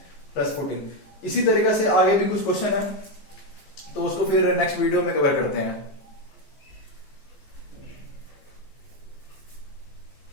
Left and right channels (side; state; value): right; late; 14 ms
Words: plus 14। इसी तरीके से आगे भी कुछ क्वेश्चन है तो उसको फिर नेक्स्ट वीडियो में कवर करते हैं।